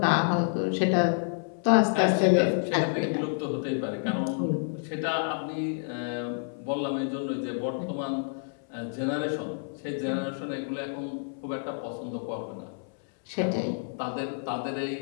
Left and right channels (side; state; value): right; silent; 59 dB below the other